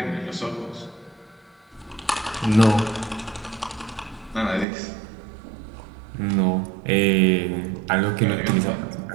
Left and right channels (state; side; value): drops out; left; at 4.7 s